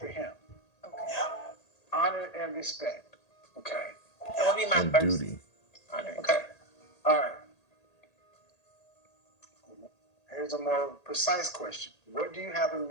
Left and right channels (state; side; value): late; right; 1.8 ms